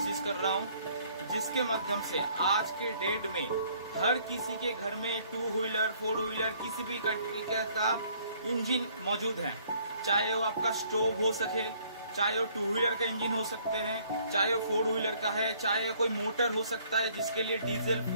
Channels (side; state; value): both; inverted; correlation -0.61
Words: कर रहा हूँ, जिसके माध्यम से आज के डेट में हर किसी के घर में टू व्हीलर, फोर व्हीलर, किसी भी तरीके का इंजन मौजूद है। चाहे वो आपका स्टोव हो सके, चाहे वो टू व्हीलर का इंजन हो सकते हैं, चाहे वो फोर व्हीलर का है, चाहे कोई मोटर हो सकता है जिसके लिए diesel